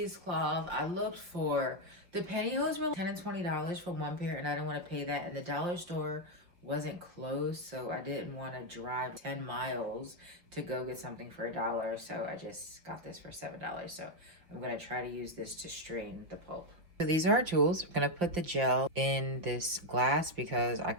I looked for, the pantyhose were $10 and $20 for one pair, and I didn't want to pay that. And the dollar store wasn't closed, so I didn't want to drive 10 miles to go get something for $1. So I just got this for $7. So I'm going to try to use this to strain the pulp. So these are our tools. I'm going to put the gel in this glass because I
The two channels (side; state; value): left; late; 5.5 ms